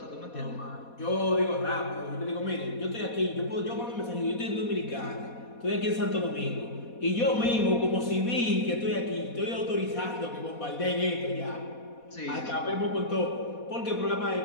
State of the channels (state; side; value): late; right; 4.1 ms